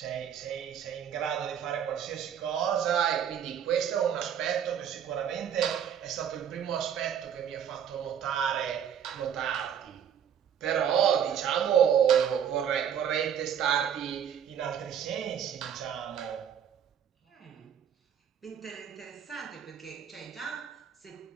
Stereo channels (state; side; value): quieter; left; 8.7 dB